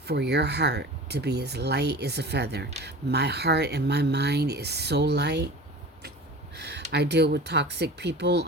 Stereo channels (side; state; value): both; normal; correlation 0.37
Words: your heart to be as light as a feather. My heart and my mind is so light. I deal with toxic people